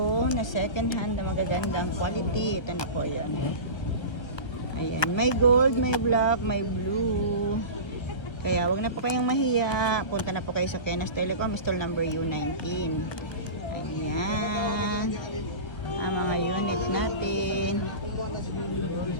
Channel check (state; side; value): late; right; 1.1 ms